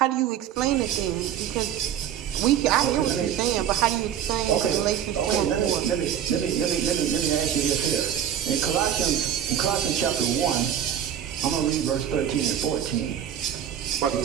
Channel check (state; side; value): quieter; left; 9.7 dB